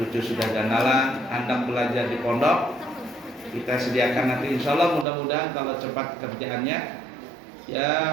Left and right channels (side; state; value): left; drops out; at 5.1 s